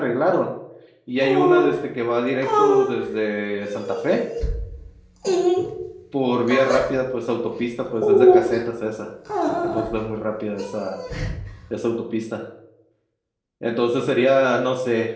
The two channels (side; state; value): both; identical; correlation 1.00